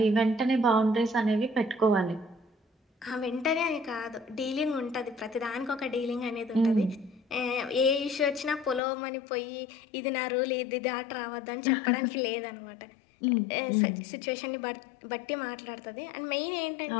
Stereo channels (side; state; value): right; drops out; at 8.8 s